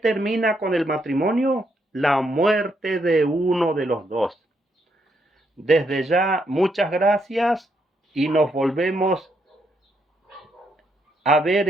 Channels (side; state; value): both; normal; correlation 0.77